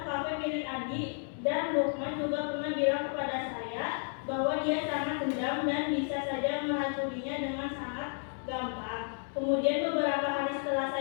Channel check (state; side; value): silent; right; 56 dB below the other